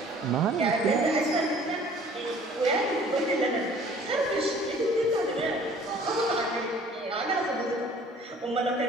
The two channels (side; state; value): both; normal; correlation 0.52